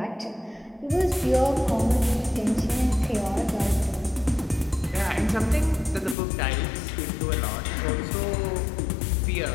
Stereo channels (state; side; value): drops out; right; at 6.2 s